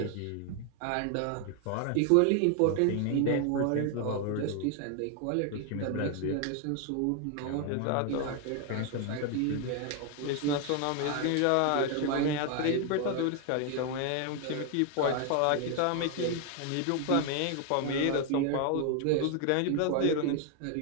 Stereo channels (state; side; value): different; both; correlation 0.01